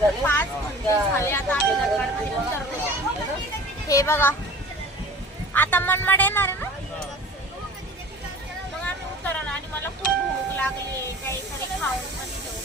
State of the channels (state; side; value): normal; both; correlation 0.42